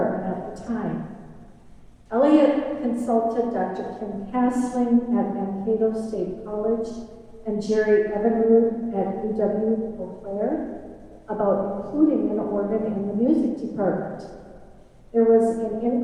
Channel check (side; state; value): both; identical; correlation 1.00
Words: at the time. Elliot consulted Dr. Kim Castling at Mankato State College and Jerry Evinrude at UWRF about including an organ in the music department. There was an